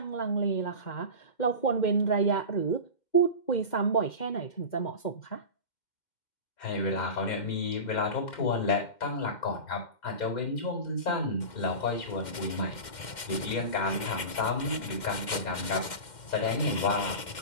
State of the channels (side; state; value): right; late; 2.1 ms